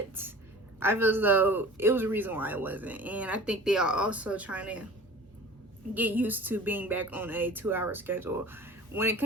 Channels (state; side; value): normal; both; correlation 0.42